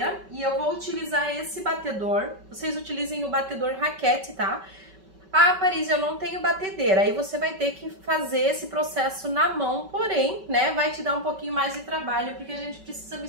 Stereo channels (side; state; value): left; late; 5.3 ms